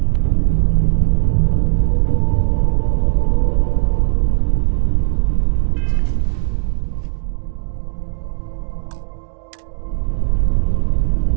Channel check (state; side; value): silent; left; digital silence